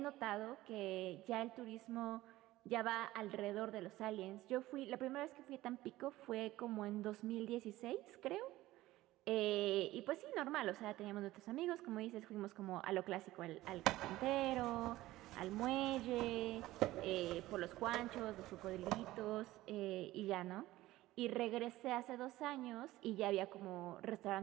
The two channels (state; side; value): quieter; left; 16.7 dB